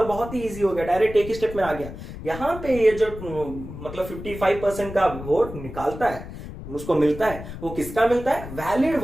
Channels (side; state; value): left; noise; rumble, 11 dB below the sound